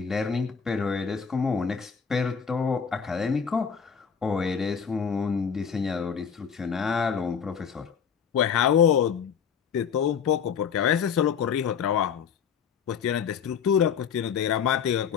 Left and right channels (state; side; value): quieter; right; 7.1 dB